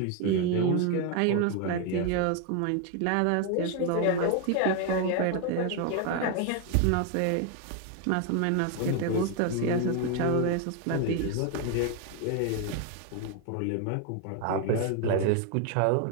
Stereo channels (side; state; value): both; different; correlation 0.01